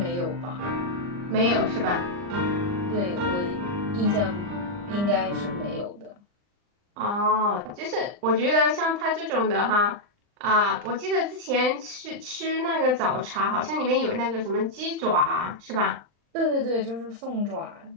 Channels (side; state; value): left; late; 39 ms